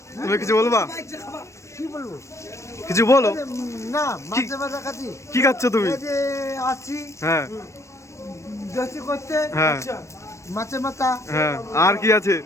তুমি কিছু বলবা? কি বলবো? কিছু বলো। না, মাঝে মাঝে কাছি কি খাচ্ছ তুমি? এই যে আছি হ্যাঁ দোস্তি করতে। হ্যাঁ মাছে মাথা, হ্যাঁ, আর কি আছে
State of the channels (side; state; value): right; late; 0.14 ms